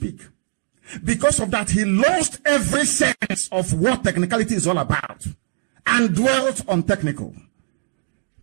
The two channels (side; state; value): left; silent; digital silence